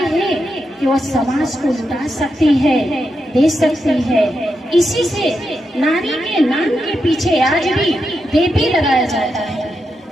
हैं कि वो समाज को लुटा सकती है, दे सकती है। इसी से नारी के नाम के पीछे आज भी देवी लगाया जाता है।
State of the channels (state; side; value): normal; both; correlation 0.86